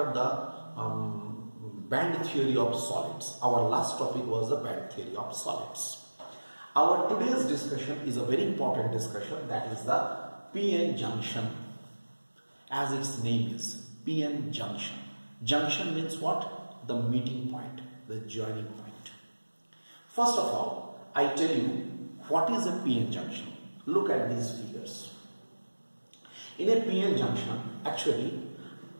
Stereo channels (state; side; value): inverted; both; correlation -1.00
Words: the band theory of solids. Our last topic was the band theory of solids. Our today's discussion is a very important discussion, that is the PN junction. As its name is, PN junction. Junction means what? The meeting point, the joining point. First of all, I tell you what is a PN junction. Look at these figures. In a PN junction, actually,